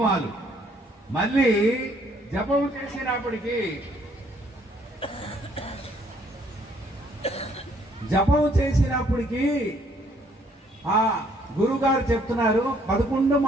మళ్ళీ జపము చేసినప్పటికీ ఆ గురుగారు చెప్తున్నారు 11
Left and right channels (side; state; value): both; normal; correlation 0.65